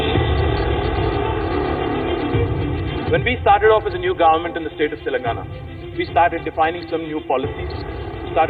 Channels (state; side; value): identical; both; correlation 1.00